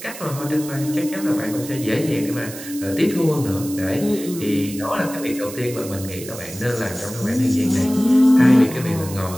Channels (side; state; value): right; noise; hiss, 13 dB below the sound